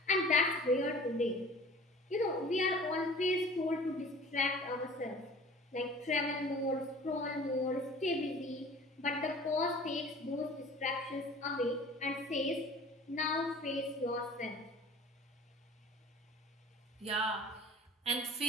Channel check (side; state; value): both; normal; correlation 0.45